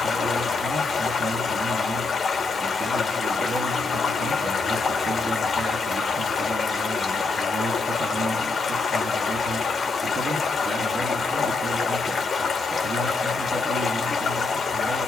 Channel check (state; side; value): quieter; right; 3.8 dB